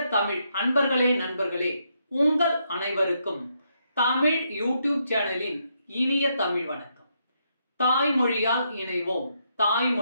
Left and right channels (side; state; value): both; inverted; correlation -0.78